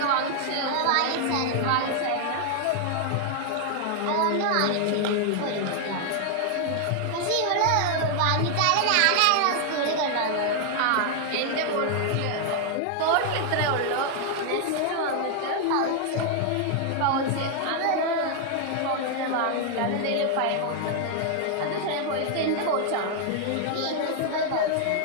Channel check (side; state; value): both; different; correlation 0.00